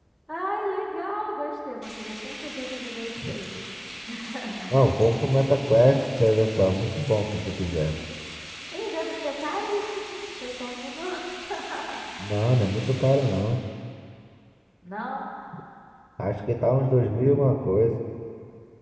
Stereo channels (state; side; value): identical; both; correlation 1.00